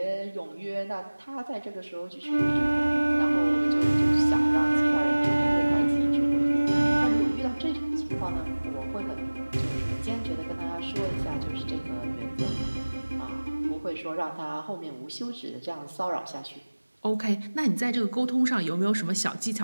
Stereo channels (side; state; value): both; inverted; correlation -1.00